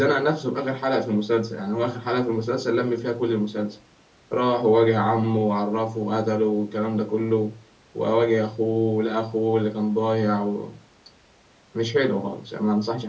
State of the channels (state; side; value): identical; both; correlation 1.00